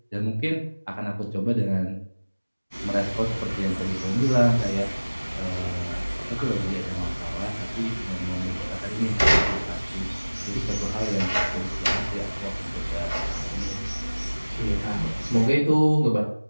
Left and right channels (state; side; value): inverted; both; correlation -1.00